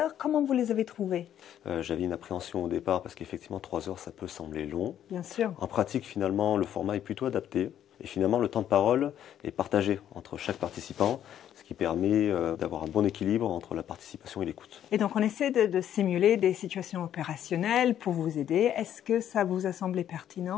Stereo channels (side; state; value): right; quieter; 10.5 dB